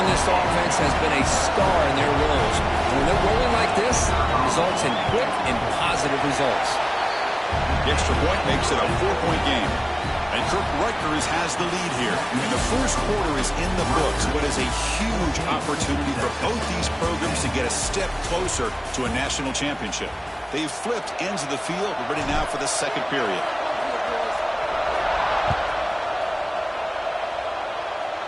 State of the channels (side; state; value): both; identical; correlation 1.00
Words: this offense has been a star in their roles. And when they're rolling like this, it results in quick and positive results. The extra point makes it a 4-point game. And Rutgers has the lead here. And the first quarter is in the books. What is a huge opportunity for both these programs to get a step closer to a national championship. They've flipped ends of the field. We're ready now for the second period.